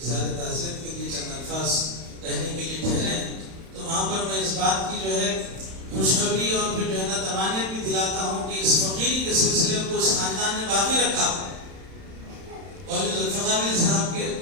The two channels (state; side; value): late; left; 31 ms